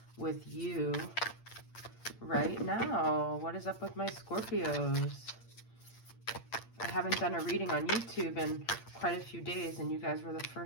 with you right now? What is up with my Scorpios? I haven't done a reading on YouTube in quite a few days, and you guys were the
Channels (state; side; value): late; right; 8.7 ms